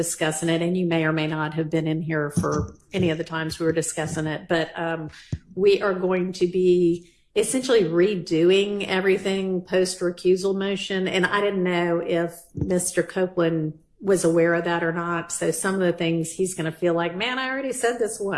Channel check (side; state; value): both; identical; correlation 1.00